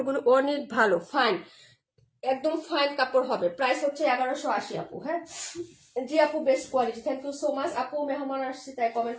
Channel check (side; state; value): both; identical; correlation 1.00